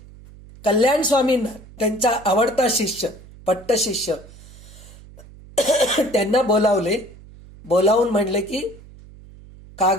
कल्याण स्वामींना, त्यांचा आवडता शिष्य, पट्ट शिष्य, त्यांना बोलावून म्हणले की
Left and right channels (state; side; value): noise; right; hum, 20 dB below the sound